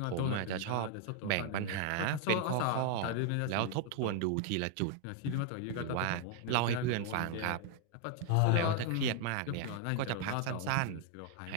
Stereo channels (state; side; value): different; both; correlation 0.00